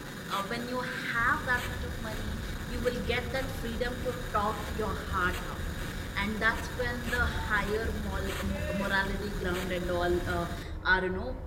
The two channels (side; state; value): both; identical; correlation 1.00